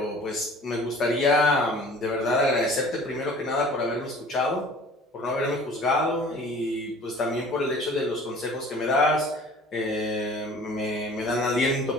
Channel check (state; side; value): normal; both; correlation 0.47